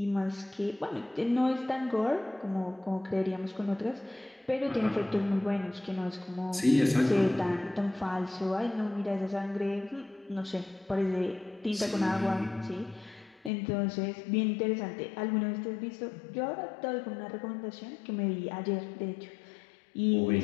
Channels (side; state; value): right; drops out; at 13.5 s